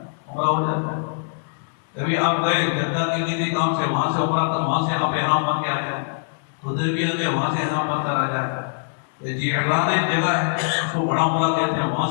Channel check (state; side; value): silent; right; 64 dB below the other